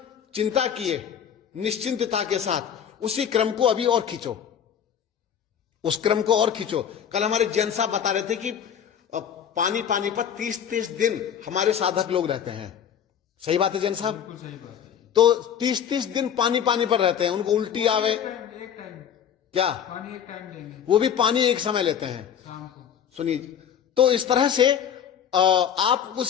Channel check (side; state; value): right; quieter; 8.6 dB